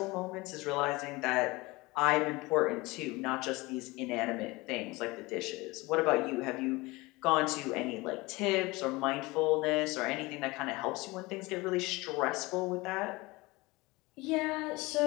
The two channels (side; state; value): right; quieter; 22.6 dB